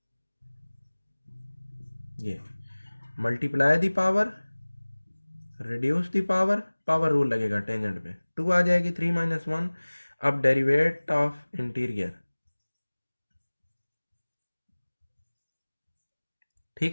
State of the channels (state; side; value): inverted; both; correlation -1.00